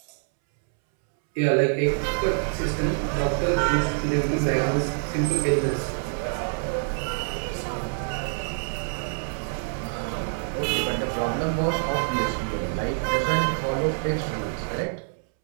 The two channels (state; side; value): silent; left; 61 dB below the other